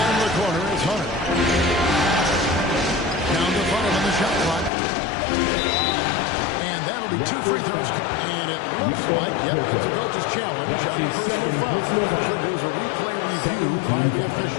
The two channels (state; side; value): drops out; right; at 4.7 s